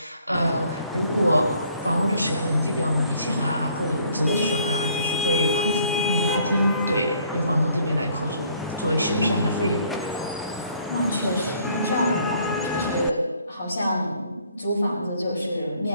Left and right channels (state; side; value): inverted; both; correlation -0.62